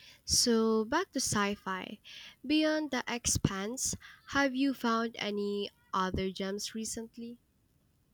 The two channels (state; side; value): identical; both; correlation 1.00